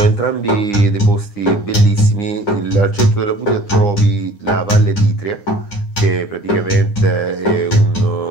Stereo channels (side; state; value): right; late; 9.8 ms